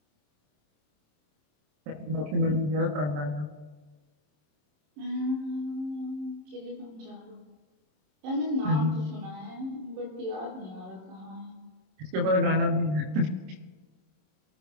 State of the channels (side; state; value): left; late; 27 ms